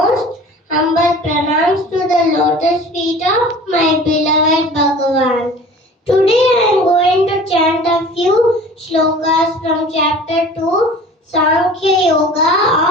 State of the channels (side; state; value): both; normal; correlation 0.43